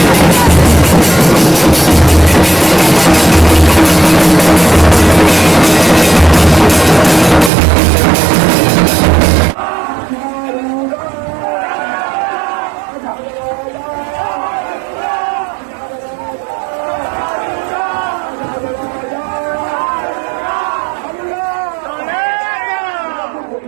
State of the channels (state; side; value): drops out; left; at 7.5 s